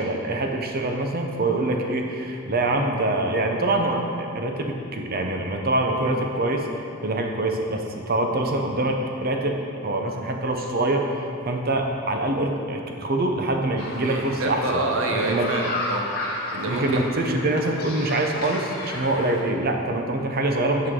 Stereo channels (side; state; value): both; normal; correlation 0.14